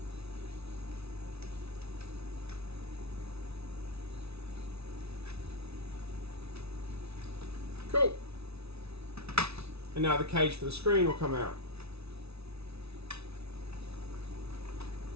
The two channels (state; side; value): late; left; 0.79 ms